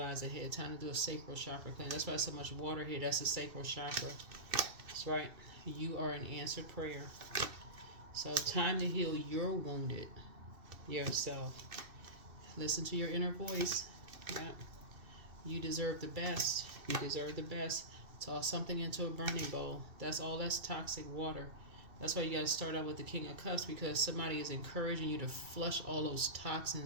ahead. Time to do a sacral chakra cleanse. That's why there's so much water here. That's the sacral chakra. That's right. You are an answered prayer. So time to heal your wounded yourself. Listen to your inner voice. Yeah. You deserve the best. You deserve the best. Toss something into a burning bowl. That's all. That's toxic water. That's why you got to start out with the King of Cups, because somebody is encouraging you to flush all those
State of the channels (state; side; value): late; left; 2.6 ms